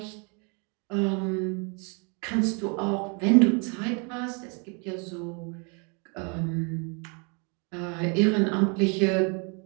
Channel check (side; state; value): left; quieter; 34.9 dB